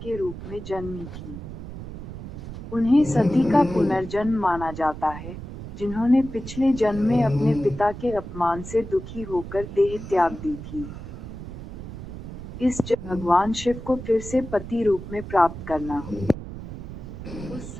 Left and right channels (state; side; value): noise; right; rumble, 10 dB below the sound